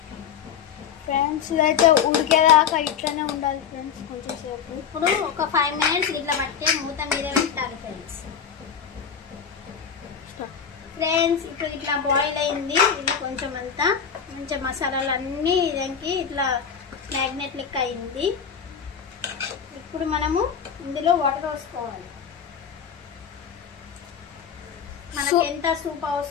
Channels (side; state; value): right; quieter; 7.5 dB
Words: ఫ్రెండ్స్ ఇదైతే ఉడికేదాకా ఇట్లానే ఉండాలి ఫ్రెండ్స్. కొంచెంసేపు ఇప్పుడు ఒక 5 మినిట్స్ ఇట్లా పట్టే మూత మీద పెట్టాలి ఫ్రెండ్స్. ఇప్పుడు ఇట్లా బాయిల్ అయింది. ఇది కొంచెం అంతా మంచిగా మసాలాలు అన్నీ ఇదానికి ఇట్లా మ్యాగ్నెట్ లెక్క అయింది. ఇప్పుడు మనము ఇందులో వాటర్ పోసుకోవాలి. మనకి ఎంత సూప్